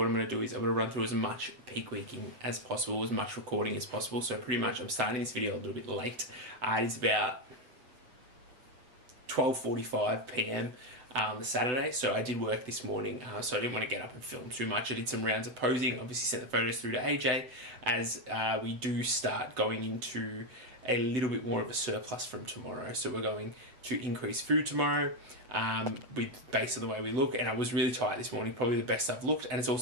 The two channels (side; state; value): left; late; 7.9 ms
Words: I'm going to do is I'm going to run through as much peak weeking as possible, as much recording as possible. So pretty much I'm starting this video a little bit late. It is about 12:45 p.m. On the Saturday, so I did work this morning, so I didn't want to get up and film too much. I did some rounds of posing, obviously sent the photos through to AJ, as we do start going into a little bit more of a surplus from tomorrow. So we're going to increase food tomorrow based on the way we look, and I was really tight this morning, probably the best I've looked, and it's